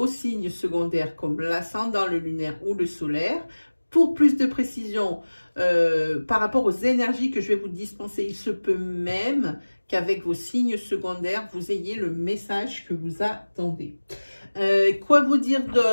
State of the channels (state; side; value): inverted; both; correlation -1.00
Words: signes secondaires comme l'ascendant, le lunaire ou le solaire. Pour plus de précision par rapport aux énergies que je vais vous dispenser, il se peut même qu'avec vos signes secondaires, vous ayez le message que vous attendez. Quoi vous dire